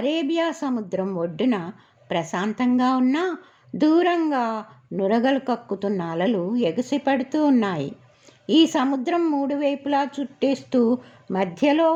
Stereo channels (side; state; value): both; identical; correlation 1.00